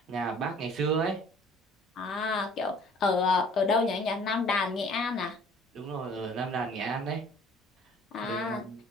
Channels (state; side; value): normal; both; correlation 0.52